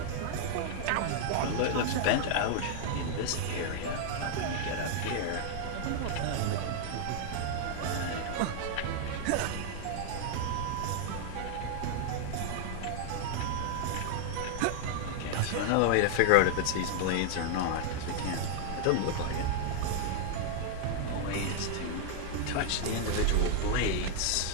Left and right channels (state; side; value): different; both; correlation 0.00